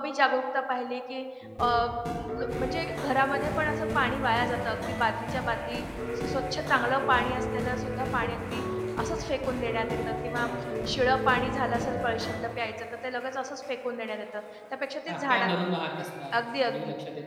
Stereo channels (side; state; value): both; identical; correlation 1.00